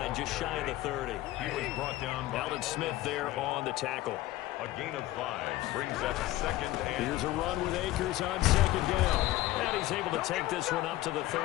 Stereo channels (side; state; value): right; quieter; 16.4 dB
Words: just shy of the 30. He was brought down by Alden Smith there on the tackle. A gain of 5 brings up 2nd and... Here's a run with Akers on 2nd down. And he's able to take this one up to the